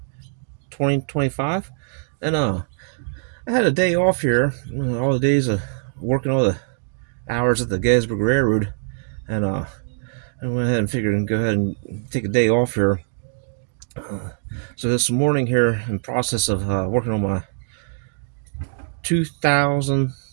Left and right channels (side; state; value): left; silent; digital silence